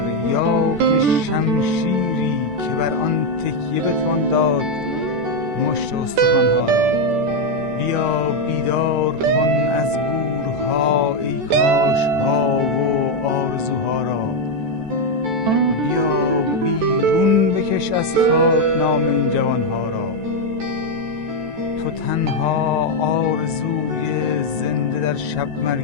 یا که شمشیری که بر آن تکیه بتوان داد مشت استخوانها را. بیا بیدار کن از گورها ای کاشها و آرزوها را. بیا بیرون بکش از خاک نام این جوانها را. تو تنها آرزوی زنده در شب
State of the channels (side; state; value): left; late; 14 ms